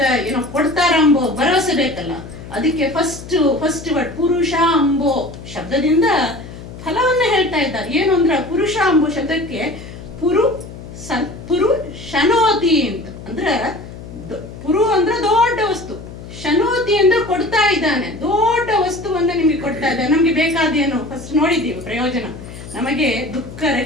ಏನೋ ಕೊಡ್ತಾರ ಅಂಬೋ ಭರವಸೆ ಬೇಕಲ್ಲ, ಅದಕ್ಕೆ ಫಸ್ಟ್ ವರ್ಡ್ ಪುರುಷ ಅಂಬೋ ಶಬ್ದದಿಂದ ಫಲವನ್ನ ಹೇಳ್ತಾ ಇದ್ದಾರೆ. ಏನು ಅಂದ್ರೆ ಪುರುಷ ಅಂಬೋ ಶಬ್ದಕ್ಕೆ ಪುರು ಶನೋತಿ ಅಂತ ಅಂದ್ರೆ ಪುರು ಅಂದ್ರೆ ದೊಡ್ಡ ವಸ್ತು, ಶನೋತಿ ಅಂದ್ರೆ ಕೊಡ್ತಾ ಇದ್ದಾನೆ, ದೊಡ್ಡ ವಸ್ತುವನ್ನ ನಿಮಗೆ ಕೊಡ್ತಾ ಇದ್ದಾನೆ. ನಮ್ಗೆ ಬೇಕಾದೇನು ಫಸ್ಟ್ ನೋಡಿದ್ದೀವಿ ಪ್ರಯೋಜನ, ನಮಗೆ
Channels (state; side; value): noise; left; hum, 13 dB below the sound